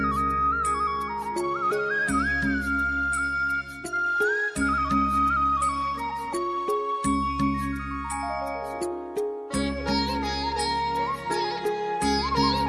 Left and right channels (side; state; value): both; identical; correlation 1.00